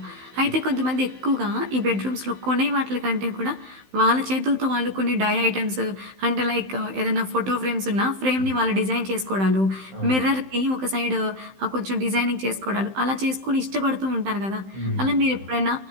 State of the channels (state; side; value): late; left; 15 ms